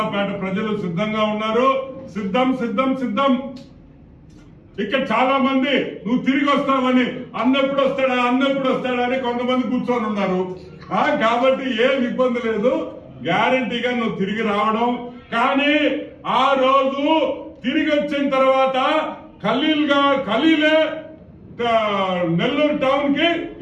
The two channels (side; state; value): both; identical; correlation 1.00